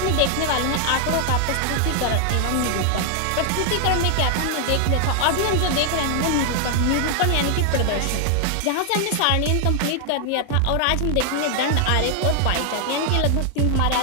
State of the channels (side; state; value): both; different; correlation 0.00